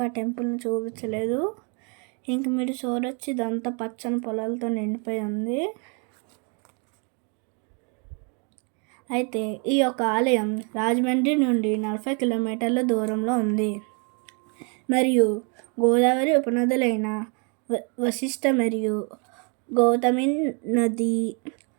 ఆ టెంపుల్ని చూపించలేదు. ఇంక మీరు చూడొచ్చు, ఇదంతా పచ్చని పొలాలతో నిండిపోయి ఉంది. అయితే ఈ యొక్క ఆలయం రాజమండ్రి నుండి 40 కిలోమీటర్ల దూరంలో ఉంది. మరియు గోదావరి ఉపనదులైన వశిష్ఠ మరియు గౌతమి నది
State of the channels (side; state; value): left; quieter; 36.7 dB